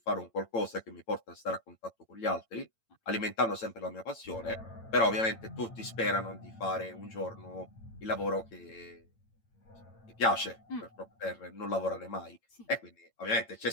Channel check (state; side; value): late; right; 8.9 ms